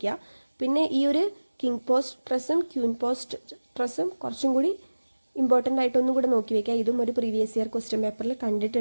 പിന്നെ ഈ ഒരു കിങ് പോസ്റ്റ് ട്രസ്സും ക്യൂൻ പോസ്റ്റ് ട്രസ്സും കുറച്ചും കൂടി ഇമ്പോർട്ടൻ്റ് ആയിട്ടൊന്നും കൂടെ നോക്കി വെക്കുക. ഇതും ഒരു പ്രീവിയസ് ഇയർ ക്വസ്റ്റ്യൻ പേപ്പറിൽ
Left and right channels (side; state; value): both; inverted; correlation -1.00